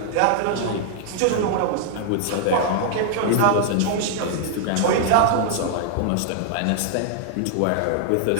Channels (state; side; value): different; both; correlation -0.01